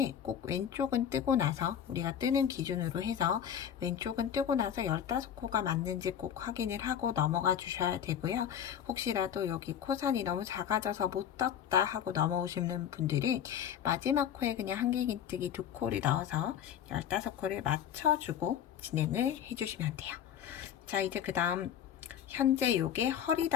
꼭 왼쪽은 뜨고 나서, 우리가 뜨는 기준으로 해서 왼쪽은 뜨고 나서 15코가 맞는지 꼭 확인을 하고 넘어가 주셔야 되고요. 혹시라도 여기 코산이 너무 작아져서 못 떴다 하고 넘어오시는 분들은 마지막 코에 그냥 한길긴뜨기 2코를 넣어서 15코를 맞춰주고 진행을 해주시면 돼요. 자, 이제 그 다음 현재 요게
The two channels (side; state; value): right; quieter; 9.3 dB